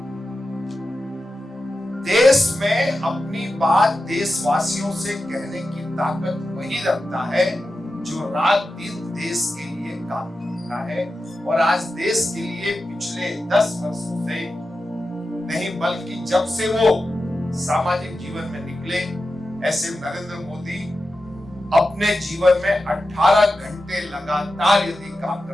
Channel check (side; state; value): both; normal; correlation 0.92